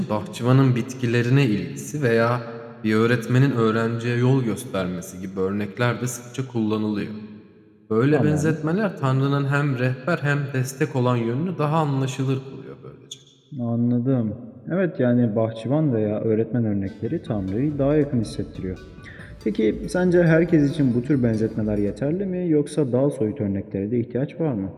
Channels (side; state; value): both; identical; correlation 1.00